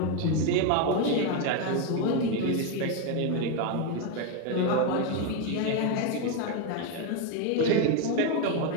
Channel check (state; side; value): different; both; correlation 0.02